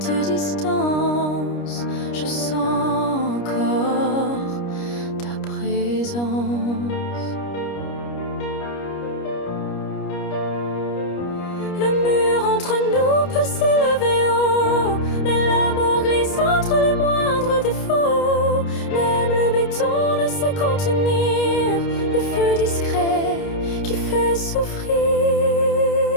distance, je sens encore ta présence. Le mur entre nous peut s'élever haut, mais l'amour glisse entre les moindres défauts. Même le béton ne sait contenir le feu discret qui fait souffrir.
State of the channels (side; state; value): right; late; 29 ms